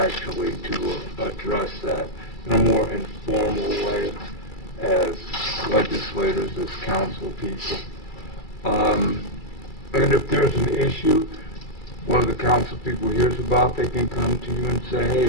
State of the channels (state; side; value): late; right; 2.3 ms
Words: actually to address that in a more informal way as legislators, as council people. And if there's an issue, one of the council people hears about, they can come to you and say,